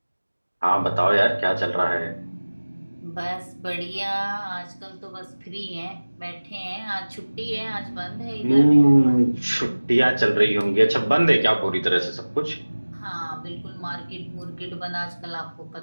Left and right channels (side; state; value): both; inverted; correlation -1.00